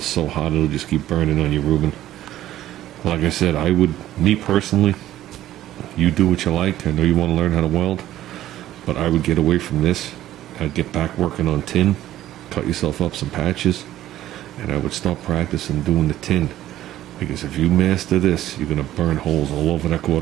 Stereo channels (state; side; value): quieter; left; 13.5 dB